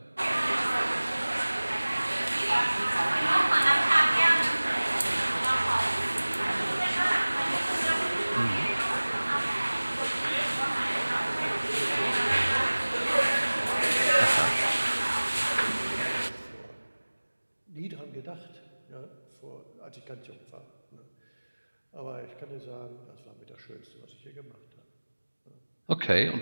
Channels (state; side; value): inverted; both; correlation -1.00